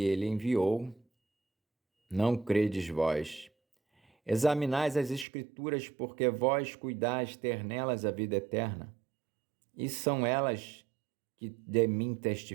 ele enviou, não credes vós. Examinais as Escrituras, porque vós cuidais ter nelas a vida eterna, e são elas que de mim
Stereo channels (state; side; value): drops out; left; at 5.2 s